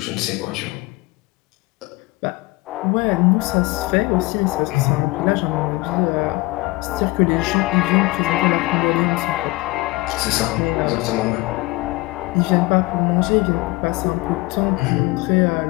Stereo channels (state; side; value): quieter; right; 21.7 dB